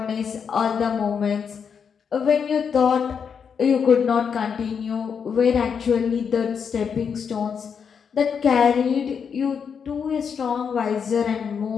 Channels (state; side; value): quieter; right; 6.7 dB